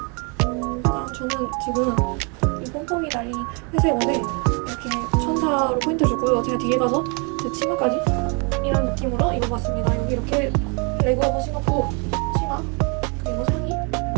일단 저는 지금 이 pompom이 달린 회색 옷에 이렇게 천사로 포인트 주고요. 제가 뒤에 가서 제 치마까지 이런 느낌으로 입어봤습니다. 여기 이렇게 레그 한번 신었고 치마 그리고 상의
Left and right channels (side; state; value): left; quieter; 34.2 dB